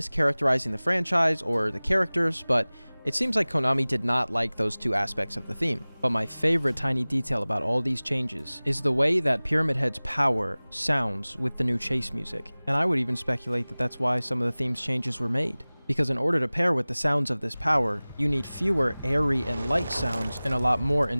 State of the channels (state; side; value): inverted; both; correlation -0.99